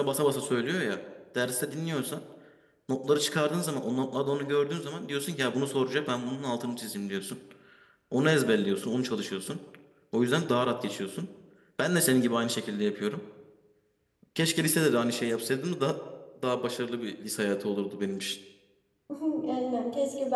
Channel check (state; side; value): identical; both; correlation 1.00